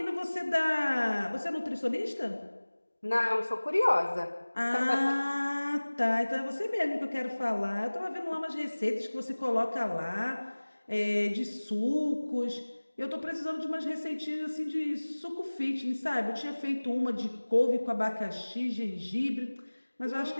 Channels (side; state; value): both; inverted; correlation -1.00